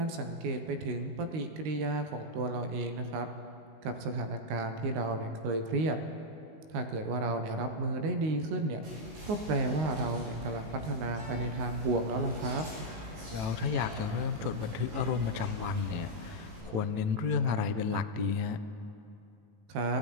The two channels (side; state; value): left; late; 19 ms